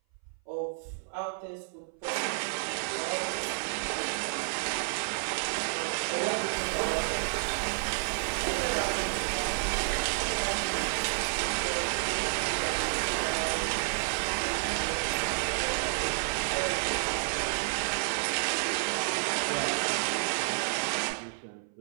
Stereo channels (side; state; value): left; silent; 57 dB below the other